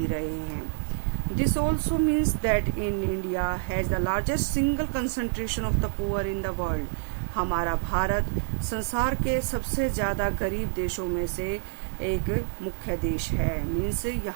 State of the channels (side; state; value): left; silent; digital silence